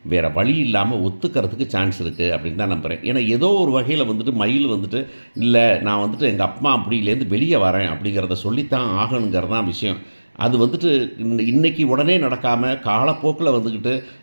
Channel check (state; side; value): inverted; both; correlation -1.00